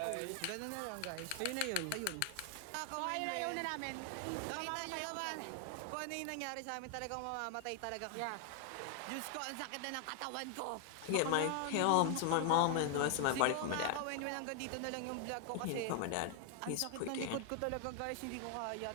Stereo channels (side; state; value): both; different; correlation 0.00